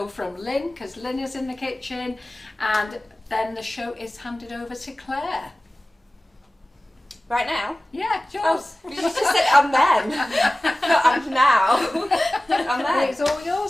from Lynn because Lynn is in the kitchen, and then the show is handed over to Claire. Right now? Yeah, yours. Oh, you just said I'm then. Not I'm now. I'm then. It's all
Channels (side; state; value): both; normal; correlation 0.97